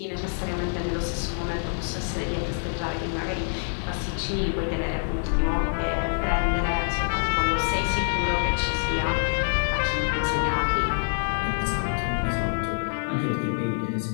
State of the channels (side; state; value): right; silent; 61 dB below the other